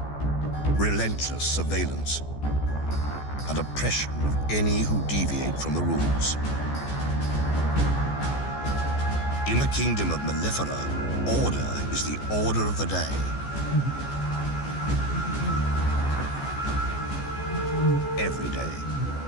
Relentless surveillance and oppression of any who deviate from the rules. In the kingdom of Mellifera, order is the order of the day. Every day.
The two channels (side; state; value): right; late; 14 ms